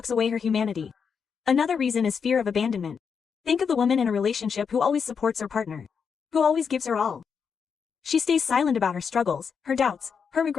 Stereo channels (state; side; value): quieter; right; 6.3 dB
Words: away her humanity. Another reason is fear of abandonment. Think of the woman in a relationship who always supports her partner, who always gives her all. She stays silent about her struggles, her doubts, her